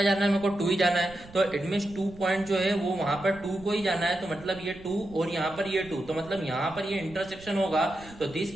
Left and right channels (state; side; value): noise; right; rumble, 19 dB below the sound